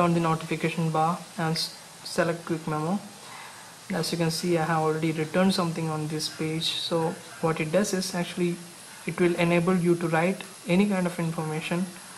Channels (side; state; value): both; identical; correlation 1.00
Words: the notification bar and select quick memo. As you can see, I have already written something on this page. So what it does is, actually it will enable you to write any kind of information